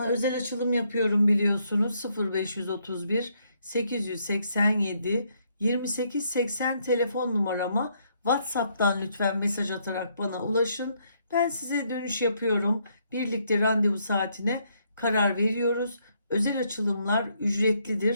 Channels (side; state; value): both; inverted; correlation -0.73